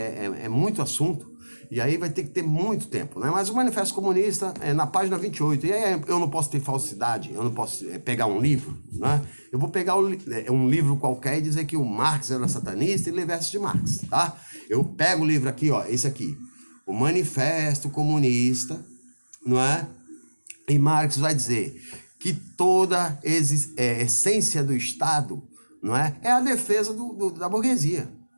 muito assunto. E aí vai ter que ter muito tempo, né? Mas o Manifesto Comunista é na página 28. E aí eu não posso ter falsidade, eu não posso pegar um livro, né? Eu vou pegar um livro qualquer e dizer que o Marx era satanista e ler versos de Marx, tá? Eu pego o livro aqui, ó, esse aqui, o Manifesto Comunista, não é? E Marx vai dizer que toda essência do Estado, não é? É a defesa da burguesia.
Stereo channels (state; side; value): inverted; both; correlation -1.00